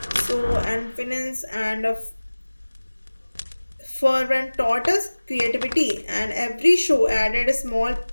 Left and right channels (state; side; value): inverted; both; correlation -1.00